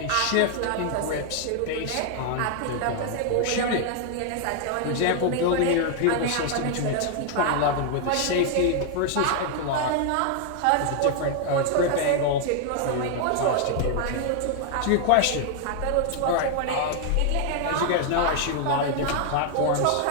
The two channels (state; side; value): different; both; correlation 0.00